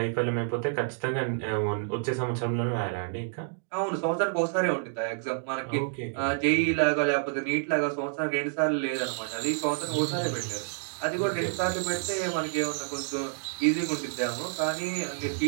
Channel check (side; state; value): left; silent; digital silence